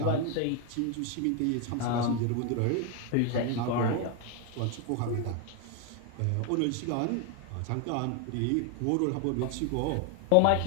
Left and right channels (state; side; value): different; both; correlation 0.01